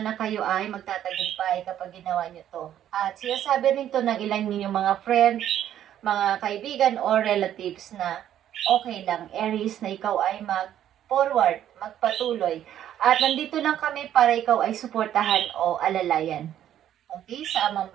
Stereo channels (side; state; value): left; quieter; 11.0 dB